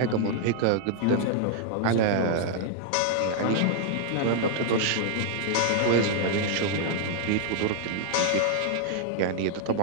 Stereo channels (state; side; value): different; both; correlation 0.00